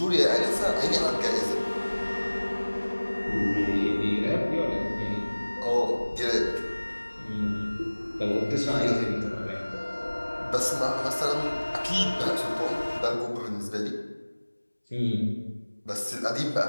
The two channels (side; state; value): both; inverted; correlation -1.00